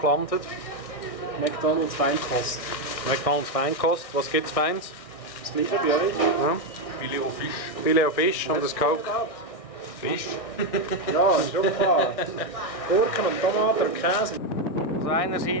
gelandet. McDonald's Feinkost. McDonald's Feinkost. Was gibt es Feins? Das gleiche bei euch? Ja. Filet au Fisch. Filet au Fisch und das Coke. Fisch? Ja, ist schon klar. Gurken und Tomaten und Käse. Also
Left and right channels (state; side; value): late; right; 1.6 ms